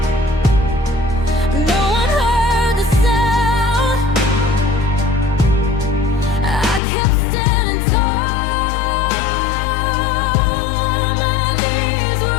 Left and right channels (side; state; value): right; drops out; at 6.8 s